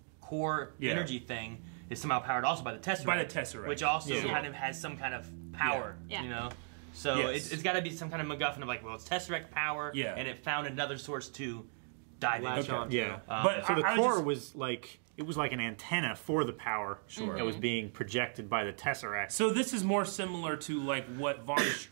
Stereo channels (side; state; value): left; silent; 54 dB below the other